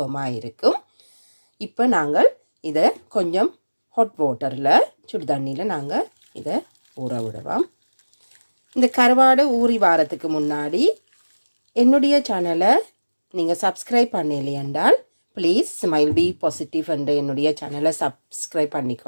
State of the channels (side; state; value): both; inverted; correlation -1.00